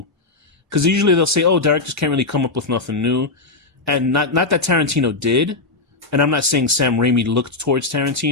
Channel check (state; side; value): quieter; right; 3.5 dB